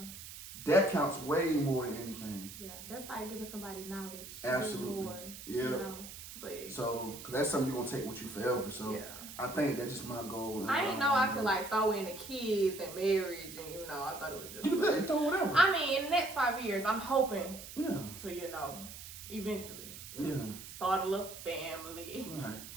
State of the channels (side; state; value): right; noise; hiss, 12 dB below the sound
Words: that counts way more than anything. Yeah, that's like giving somebody knowledge. Absolutely. More, But so, cause that's something you're gonna take with you forever. So yeah. I think that's just my goal. I didn't know I could like throw in the kids and marriage, and I thought it was just. You can throw whatever. I mean, in the next 5 years, I'm hoping. Yeah. To eventually. Yeah. Start a little family. Right.